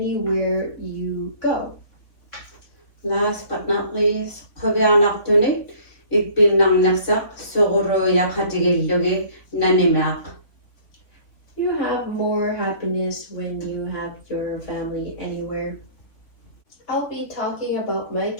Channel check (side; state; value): right; late; 3.3 ms